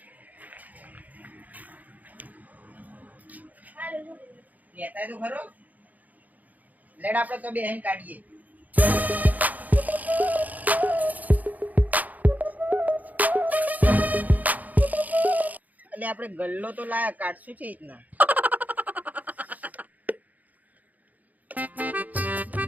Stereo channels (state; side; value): late; left; 0.079 ms